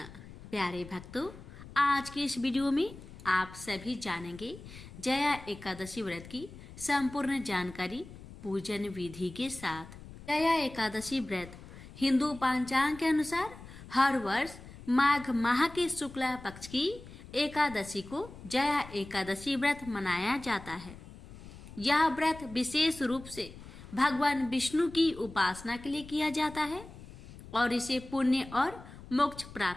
प्यारे भक्तों, आज के इस वीडियो में आप सभी जानेंगे जया एकादशी व्रत की संपूर्ण जानकारी पूजन विधि के साथ। जया एकादशी व्रत हिंदू पंचांग के अनुसार हर वर्ष माघ माह के शुक्ला पक्ष की एकादशी को जया एकादशी व्रत मनाया जाता है। यह व्रत विशेष रूप से भगवान विष्णु की उपासना के लिए किया जाता है और इसे पुण्य और मोक्ष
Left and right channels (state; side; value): noise; left; rumble, 16 dB below the sound